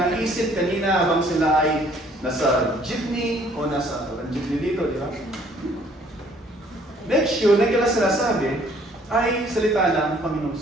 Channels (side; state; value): both; normal; correlation 0.60